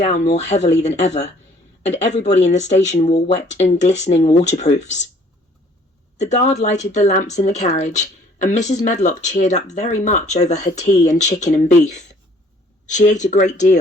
more heavily than ever, and everybody in the station wore wet and glistening waterproofs. The guard lighted the lamps in the carriage, and Mrs. Medlock cheered up very much over her tea and chicken and beef. She ate a great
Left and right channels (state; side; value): normal; both; correlation 0.58